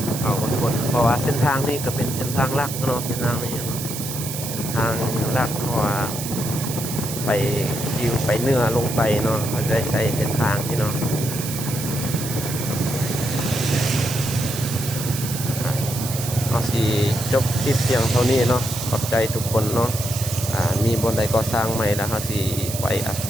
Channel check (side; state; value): right; noise; hiss, 7 dB below the sound